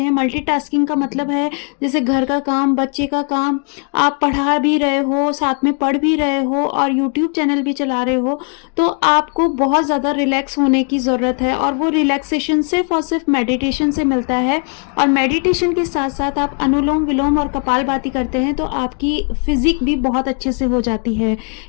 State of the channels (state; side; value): quieter; right; 39.9 dB